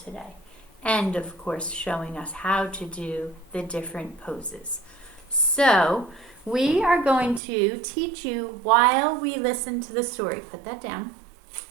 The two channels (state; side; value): drops out; left; at 7.4 s